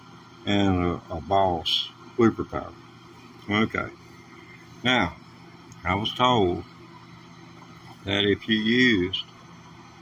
and a Boss looper power. Okay. Now, I was told that if you used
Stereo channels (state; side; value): identical; both; correlation 1.00